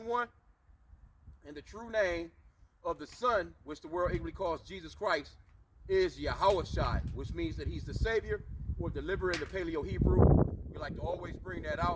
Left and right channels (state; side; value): identical; both; correlation 1.00